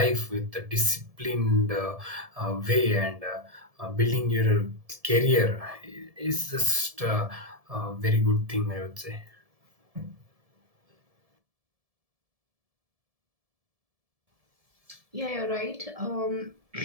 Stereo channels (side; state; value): left; late; 1.7 ms